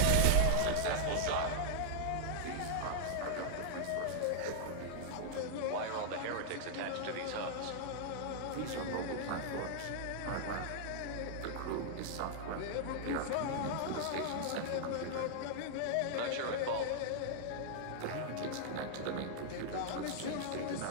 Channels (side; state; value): both; different; correlation -0.01